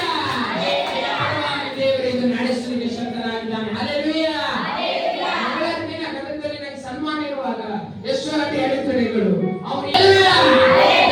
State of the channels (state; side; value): identical; both; correlation 1.00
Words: ದೇವರು ಇದು ನಡೆಸಲಿಕ್ಕೆ ಶಕ್ತನಾಗಿದ್ದಾನೆ. ಹಲ್ಲೆಲೂಯಾ. ದಿನ ಗದಗದಲ್ಲಿ ನನಗೆ ಸನ್ಮಾನ ಇರುವಾಗ ಎಷ್ಟೋ ಅಡೆತಡೆಗಳು ಅವ್ರು